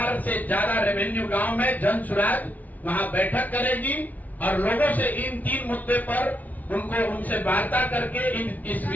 से ज्यादा रेवेन्यू गांव में जन सुराज वहां बैठक करेगी और लोगों से इन 3 मुद्दे पर उनसे वार्ता करके इस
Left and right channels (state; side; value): late; right; 0.076 ms